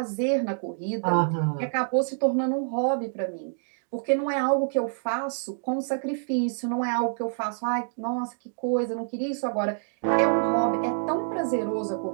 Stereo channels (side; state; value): left; silent; digital silence